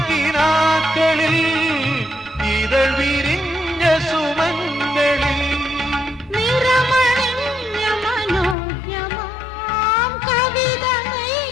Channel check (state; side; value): drops out; right; at 8.6 s